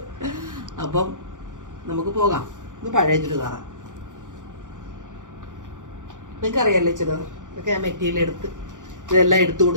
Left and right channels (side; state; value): left; late; 0.87 ms